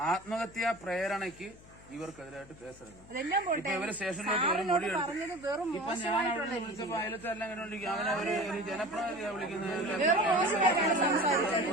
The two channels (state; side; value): noise; left; hum, 22 dB below the sound